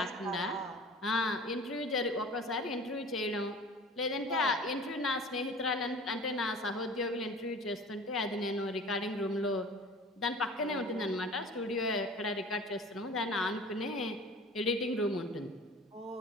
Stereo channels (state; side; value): normal; both; correlation 0.42